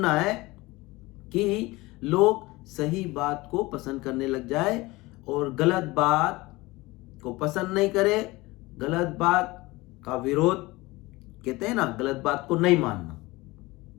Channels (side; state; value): right; quieter; 21.3 dB